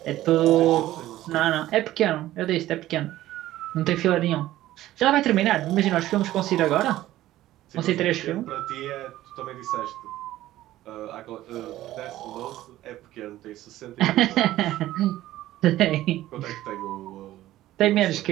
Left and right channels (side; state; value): left; quieter; 14.8 dB